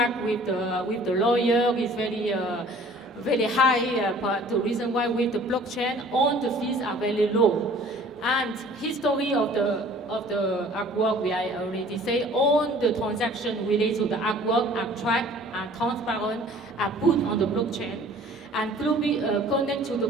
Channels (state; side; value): normal; both; correlation 0.51